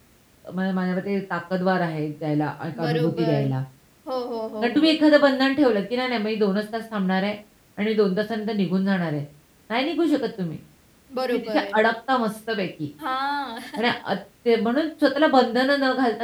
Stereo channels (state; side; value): identical; both; correlation 1.00